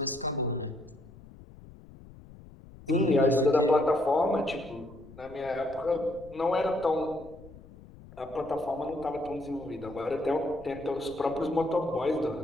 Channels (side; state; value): left; noise; rumble, 20 dB below the sound